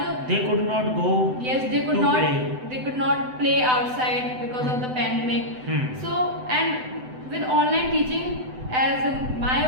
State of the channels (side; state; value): left; late; 7.9 ms